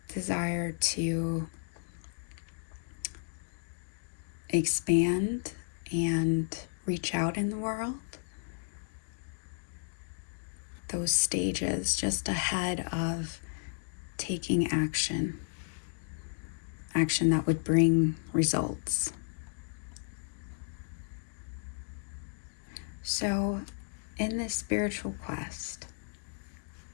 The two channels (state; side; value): silent; right; digital silence